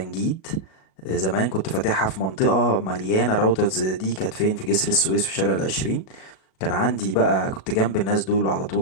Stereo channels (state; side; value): late; right; 37 ms